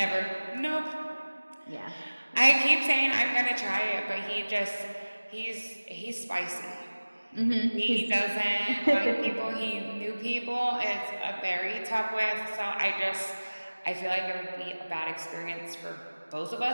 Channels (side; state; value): both; inverted; correlation -1.00